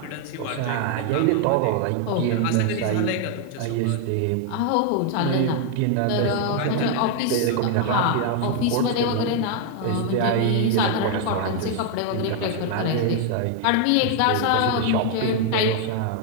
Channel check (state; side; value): different; both; correlation 0.00